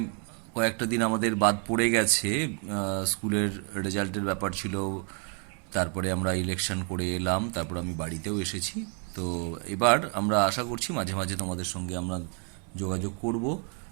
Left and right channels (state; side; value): quieter; left; 36.8 dB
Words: কয়েকটা দিন আমাদের বাদ পড়ে গেছে, স্কুলের রেজাল্টের ব্যাপার ছিল, তারপরে আমরা ইলেকশন করে এলাম, তারপর আমি বাড়িতেও এসেছি। তো এবার আমরা আশা করছি মাঝে মাঝে তোমাদের সঙ্গে আমরা যোগাযোগ করব,